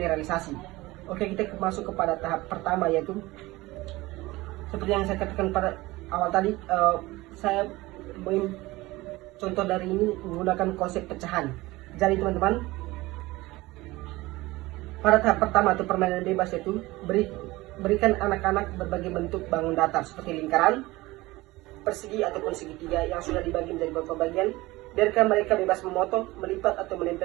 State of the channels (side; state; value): left; quieter; 19.9 dB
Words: Oke, kita masuk kepada tahap pertama, yaitu seperti yang saya katakan pada awal tadi, saya contoh dari ini menggunakan konsep pecahan. Jadi teman-teman, pada tahap pertama atau permainan bebas itu berikan anak-anak berbagai bentuk bangun datar seperti lingkaran, persegi ataupun segitiga yang sudah dibagi menjadi beberapa bagian. Biarkan mereka bebas memotong, melipat atau